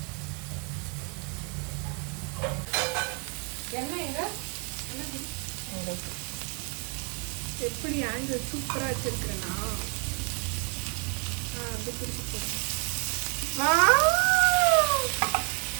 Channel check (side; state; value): left; quieter; 33.6 dB